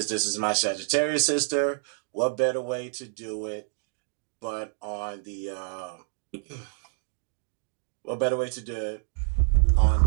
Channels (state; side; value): silent; left; digital silence